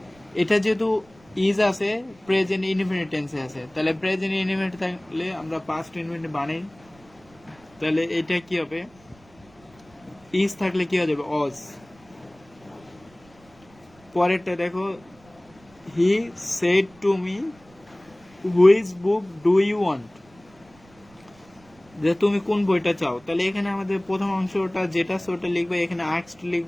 এটা যেহেতু ইজ আছে প্রেজেন্ট ইনডিফিনিট টেন্সে আছে, তাহলে প্রেজেন্ট ইনডিফিনিট থাকলে আমরা পাস্ট ইনডিফিনিট বানাই, তাহলে এটা কি হবে, ইজ থাকলে কি হয়ে যাবে অজ। পরেরটা দেখো, he said to me which book do you want, যে তুমি কোন বইটা চাও, তাহলে এখানে আমাদের প্রথম অংশটা যেটা ওটা লিখবা, এখানে আস্কড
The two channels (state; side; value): noise; right; rumble, 28 dB below the sound